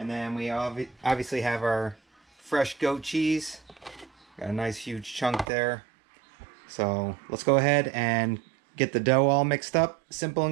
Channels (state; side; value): drops out; left; at 5.5 s